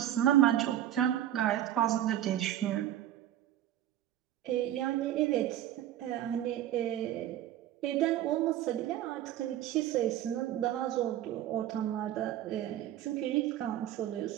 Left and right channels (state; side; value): quieter; left; 12.4 dB